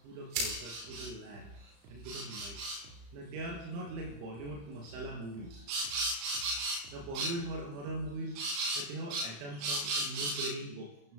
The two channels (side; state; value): left; late; 35 ms